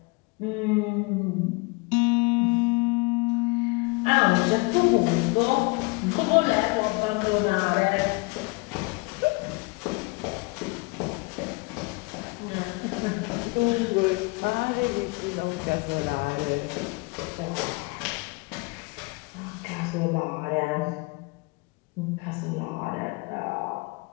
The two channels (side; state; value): right; quieter; 27.8 dB